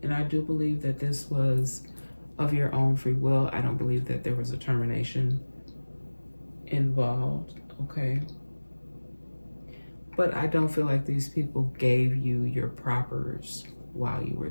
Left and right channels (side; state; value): both; inverted; correlation -1.00